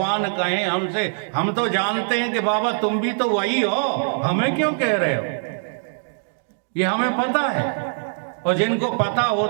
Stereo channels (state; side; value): silent; left; digital silence